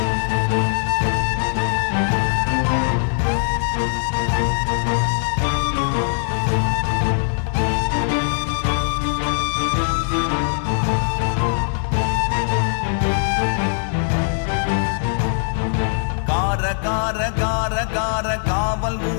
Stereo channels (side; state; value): right; silent; digital silence